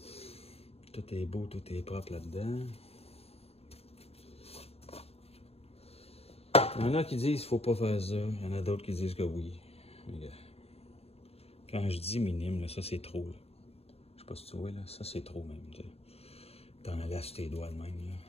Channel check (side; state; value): right; late; 0.29 ms